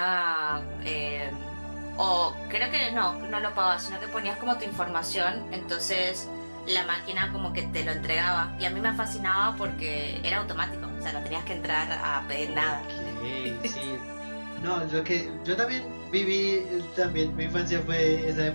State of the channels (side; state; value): both; inverted; correlation -1.00